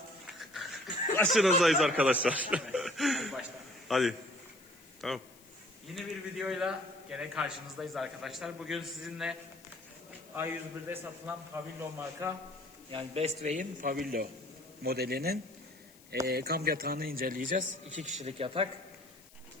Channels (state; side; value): noise; left; hiss, 24 dB below the sound